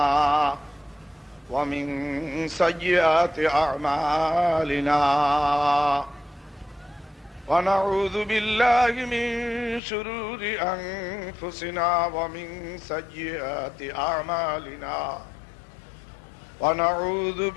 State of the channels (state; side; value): drops out; right; at 9.8 s